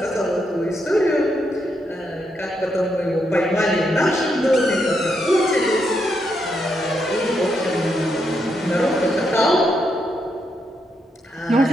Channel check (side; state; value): both; normal; correlation 0.80